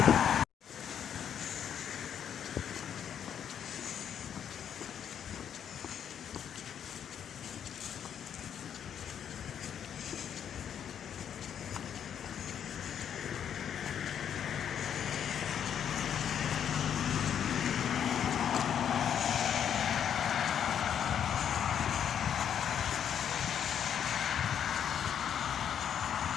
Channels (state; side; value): quieter; right; 8.7 dB